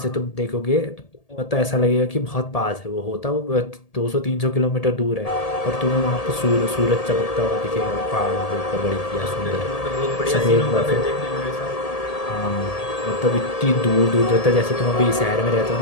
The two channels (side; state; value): right; late; 1.8 ms